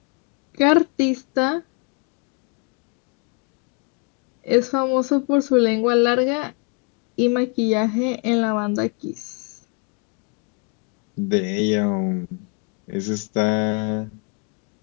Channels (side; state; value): right; quieter; 33.1 dB